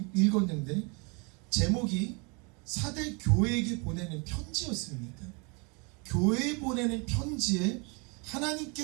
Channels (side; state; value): left; quieter; 32.0 dB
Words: 읽었는데, 제목이 사대 교회에게 보내는 편지였습니다. 교회에 보내는 편지에